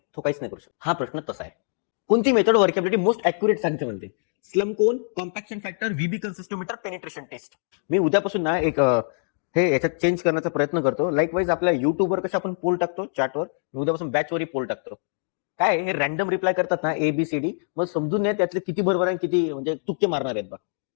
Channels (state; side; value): silent; right; digital silence